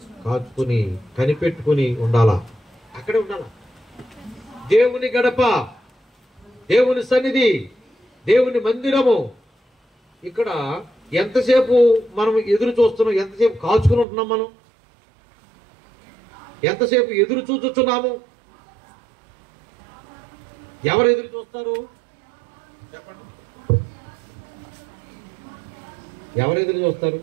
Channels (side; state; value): left; drops out; at 14.1 s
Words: కాచుకుని కనిపెట్టుకుని ఉండాలా, అక్కడే ఉండాలా. దేవుని గడప, దేవుని సన్నిధి, దేవుని మందిరము. ఇక్కడ ఎంతసేపు మనం ఎదురు చూస్తున్నాం? ఎంతసేపు కాచుకుని ఉంటున్నాం? మనం ఎంతసేపు ఎదురు చూస్తున్నాము? ఎవరు ఎదురు చూస్తారు చెప్పండి? ఎవరు ఎదురు చూస్తారు?